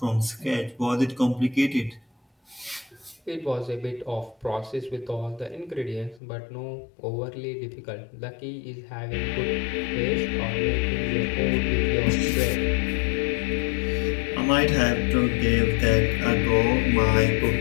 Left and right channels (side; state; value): right; drops out; at 6.2 s